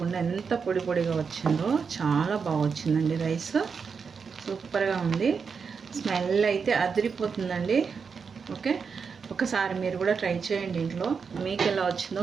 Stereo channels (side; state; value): left; quieter; 5.7 dB